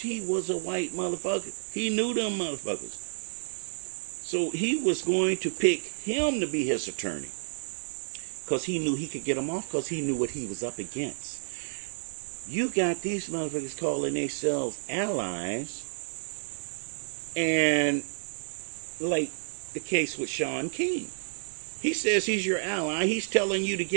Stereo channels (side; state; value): left; silent; digital silence